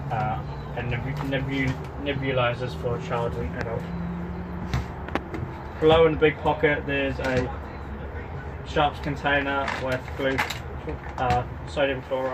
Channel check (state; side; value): identical; both; correlation 1.00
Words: and nebulizers for child and adult. Below in the big pocket there's a sharps container with sodium